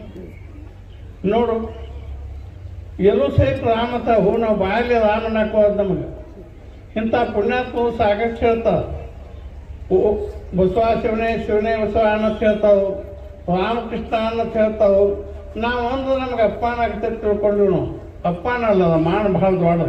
ನೋಡು ಎಲ್ಲೂ ಸಹಿತ ರಾಮತ ಹೂ ನಾವು ಬಾಯಲ್ಲಿ ರಾಮನ ಹಾಕೋದು ನಮಗೆ. ಇಂಥ ಪುಣ್ಯಾತ್ಮವು ಸಾಕಷ್ಟು ಹೇಳ್ತಾವೆ. ಬಸವ ಶಿವನೇ ಶಿವನೇ ಬಸವ ಅನ್ನತ್ ಹೇಳ್ತಾವು, ರಾಮಕೃಷ್ಣ ಅನ್ನತ್ ಹೇಳ್ತಾವು. ನಾವು ಒಂದು ನಮ್ಗೆ ಅಪ್ಪನಾಗ್ತದೆ ತಿಳ್ಕೊಂಡು ನಾವು ಅಪ್ಪನಲ್ಲ, ಮಾನ ಭಾಳ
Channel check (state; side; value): identical; both; correlation 1.00